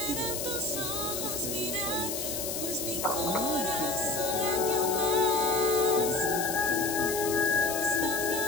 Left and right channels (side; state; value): left; noise; hiss, 4 dB below the sound